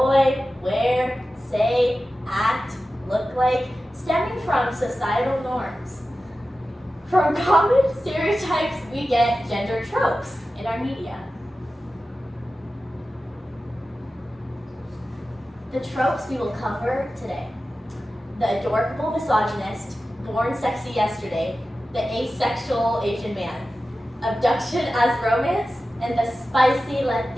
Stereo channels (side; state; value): both; normal; correlation 0.94